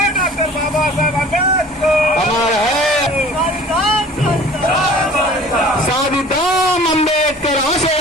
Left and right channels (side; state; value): both; normal; correlation 0.46